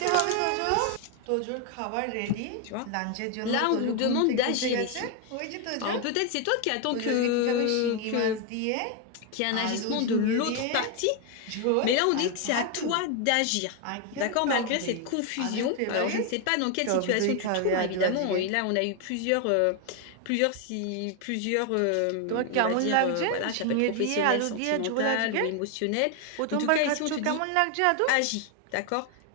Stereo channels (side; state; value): both; different; correlation 0.01